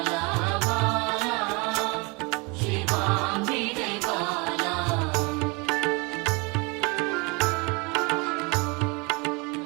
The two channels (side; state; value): left; quieter; 29.2 dB